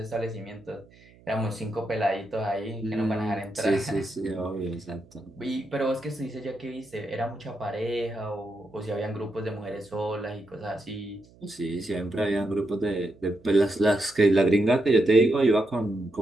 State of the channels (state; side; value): noise; right; hum, 26 dB below the sound